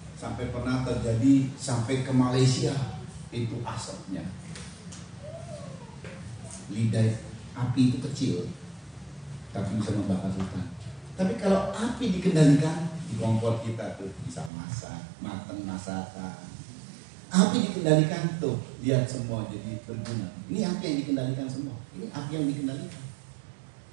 Sampai pernah terjadi sampai ke Malaysia itu asapnya. Lidah api itu kecil, tapi bisa membakar hutan. Tapi kalau api dikendalikan, di kompor kita tuh bisa masak, mateng masakan. Api dikendalikan tuh, lihat semua jadi berguna. Ini api yang dikendalikan semua. Ini api yang dikendalikan.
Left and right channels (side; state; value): left; drops out; at 14.5 s